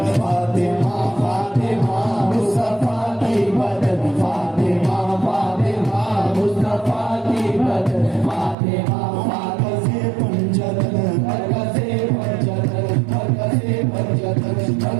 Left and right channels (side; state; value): left; drops out; at 8.6 s